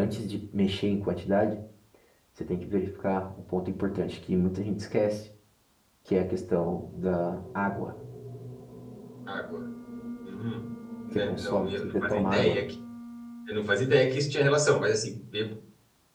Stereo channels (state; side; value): identical; both; correlation 1.00